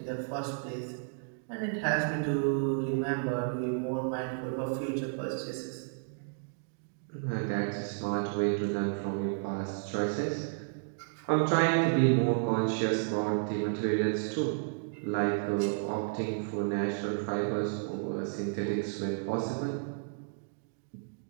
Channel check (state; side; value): silent; left; digital silence